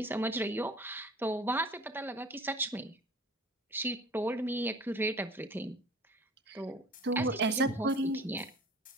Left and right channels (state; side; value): normal; both; correlation 0.44